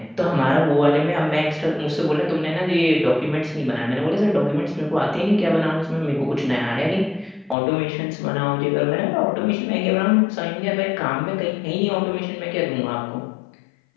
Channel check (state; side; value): drops out; right; at 7.6 s